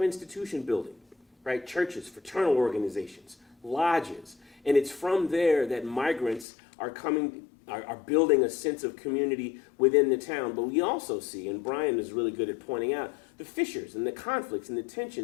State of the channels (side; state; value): right; drops out; at 6.5 s